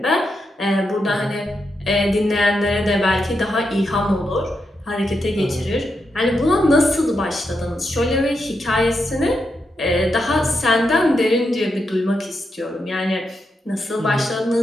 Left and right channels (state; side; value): normal; both; correlation 0.85